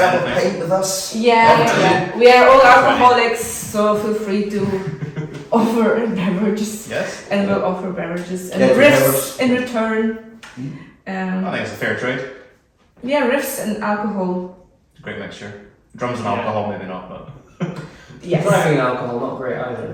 a anything. pint with us. Yeah. We are all alcoholics, so feel free to offer beverages, Yes. and we'll offer beverages and Yeah, riffs in return. I think it's a fair trade. Yeah, riffs and alcohol. Great mixture. Drums and alcohol, maybe not, but. Yes. Driving alcohol, not great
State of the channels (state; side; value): identical; both; correlation 1.00